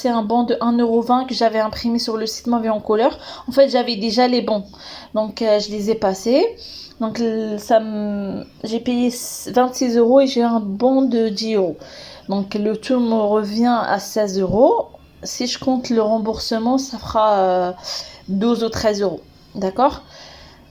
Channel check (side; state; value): both; identical; correlation 1.00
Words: un bon de 1,20 € que j'avais imprimé sur le site Ma Vie en couleur. En fait j'avais déjà les bons. Donc je les ai passés. Donc j'ai payé 26 euros et j'ai un bon de 10 euros. Donc le tout me revient à 16 euros. Si je compte le remboursement, ça fera 12 ou 13 euros. D'accord?